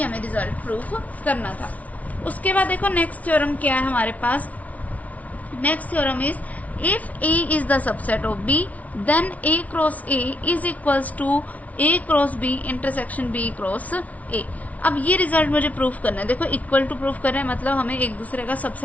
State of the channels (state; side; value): late; right; 0.070 ms